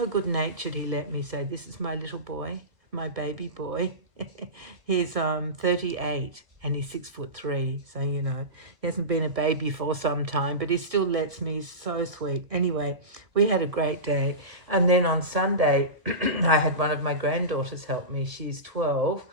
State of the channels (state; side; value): late; left; 1.7 ms